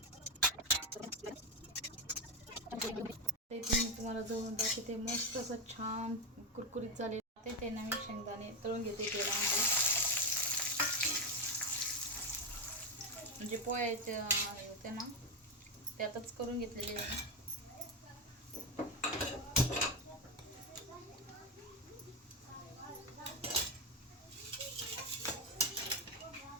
ते तुम्हाला जवळून दाखवते. मस्त असं छान कुरकुरीत झाले ते ना, मी शेंगदाणे तळून घेते तेलामध्ये. म्हणजे पोह्याचे होते ना त्यातच करून घेतलेले आहे.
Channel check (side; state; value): both; normal; correlation 0.10